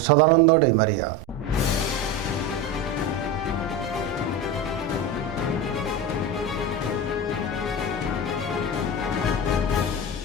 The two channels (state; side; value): normal; both; correlation 0.23